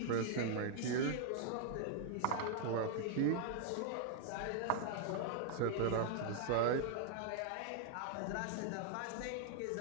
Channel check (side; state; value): both; different; correlation 0.00